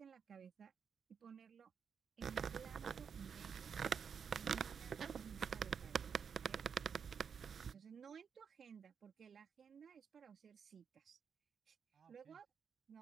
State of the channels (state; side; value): quieter; left; 6.8 dB